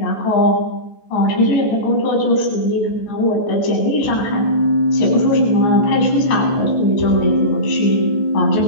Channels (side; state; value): right; late; 14 ms